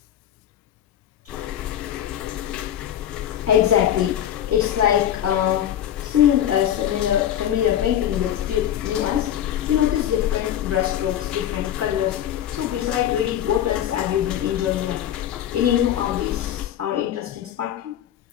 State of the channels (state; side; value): quieter; right; 10.9 dB